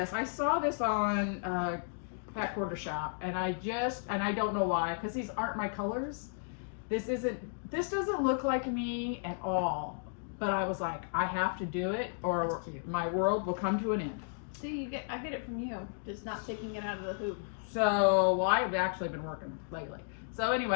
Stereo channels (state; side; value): silent; right; digital silence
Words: I saw this on Fat Quarter Shop, and I don't know why, because these aren't my colors. This doesn't look like me at all. But I was like, I have to do it, or my world will come to an end. See, I get it from you, just not taking it out of the hoop. So, well, I've actually been working lately. So